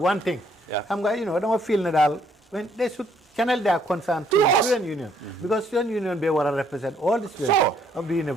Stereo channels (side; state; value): both; normal; correlation 0.67